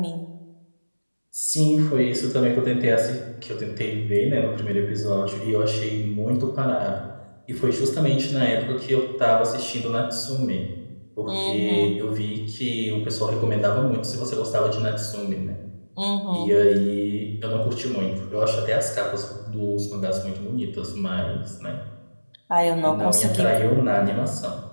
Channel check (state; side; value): inverted; both; correlation -1.00